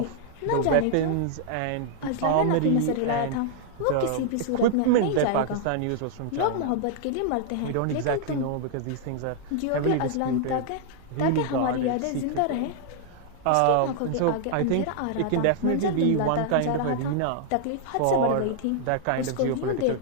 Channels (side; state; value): both; different; correlation -0.01